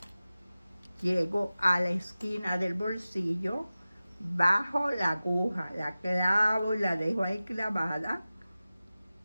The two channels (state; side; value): inverted; both; correlation -0.96